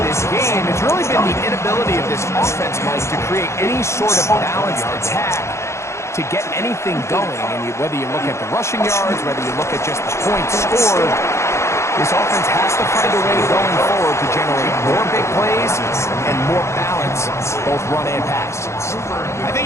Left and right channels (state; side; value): late; right; 0.13 ms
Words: of this game, it's really been the inability of this offense, Mike, to create any sort of balanced attack to get anything going. And whether you look at the rushing yards, whether you look at just the points scored, this offense has to find a way going forward to generate more big plays and more balance, both run and pass. I